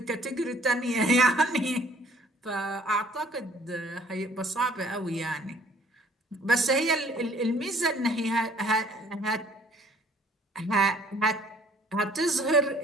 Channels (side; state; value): both; normal; correlation 0.57